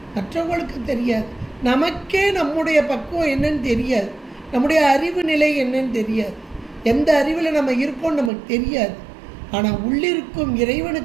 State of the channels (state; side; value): drops out; left; at 8.3 s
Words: மற்றவங்களுக்கு தெரியாது. நமக்கே நம்முடைய பக்குவம் என்னன்னு தெரியாது, நம்முடைய அறிவு நிலை என்னன்னு தெரியாது, எந்த அறிவில் நம்ம இருக்கோம் நமக்கு தெரியாது. ஆனால் உள்ளிருக்கும்